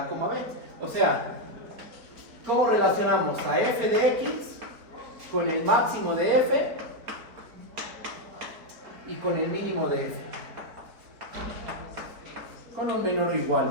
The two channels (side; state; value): left; late; 4.3 ms